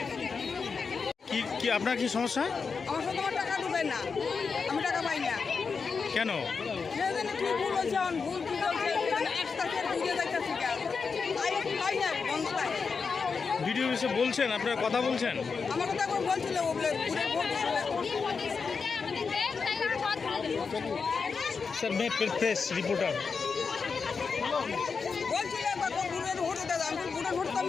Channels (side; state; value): right; quieter; 5.2 dB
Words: কি আপনার কি সমস্যা? আমার সাথে আমার টাকা ঢুকে না, আমি টাকা পাই না। কেন? কি ভুল হয়েছে, ভুল কি হয়েছে, ভিডিও এসে বলছেন, আপনারা কথা বলছেন? আমার কথা এখন বলছিল স্যার मैं प्रेस रिपोर्टर বলছিল ভোট দাদা, আমি ভোটের ভোট তো